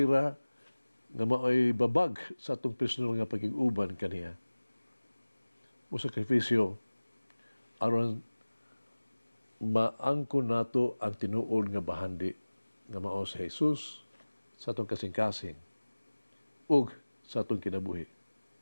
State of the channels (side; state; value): both; inverted; correlation -1.00